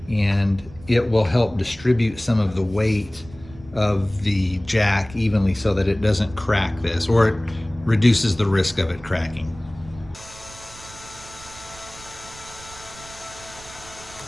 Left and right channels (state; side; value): noise; right; rumble, 19 dB below the sound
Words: and it will help distribute some of the weight of the jack evenly so that it doesn't crack this, or it reduces the risk of it cracking.